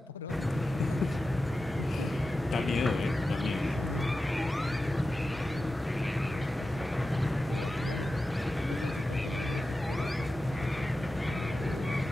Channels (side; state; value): both; normal; correlation 0.93